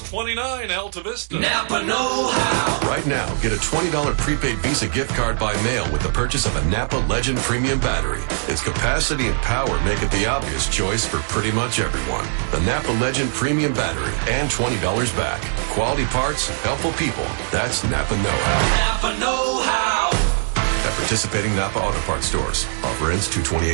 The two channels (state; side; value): silent; left; digital silence